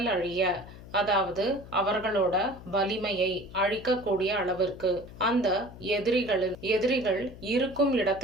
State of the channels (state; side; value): noise; left; hum, 17 dB below the sound